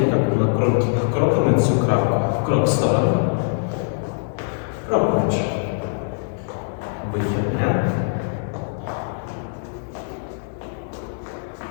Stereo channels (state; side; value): silent; right; 64 dB below the other